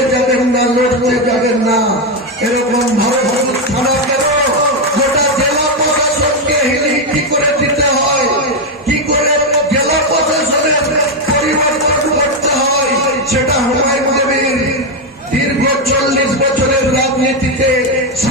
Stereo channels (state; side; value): normal; both; correlation 0.06